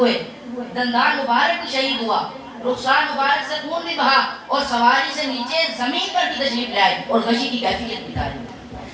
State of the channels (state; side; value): identical; both; correlation 1.00